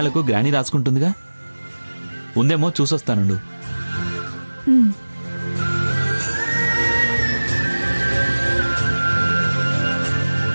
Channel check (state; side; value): inverted; both; correlation -1.00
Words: గ్రాని రాసుకుంటుందిగా, ఉందేమో చూసొస్తానుండు.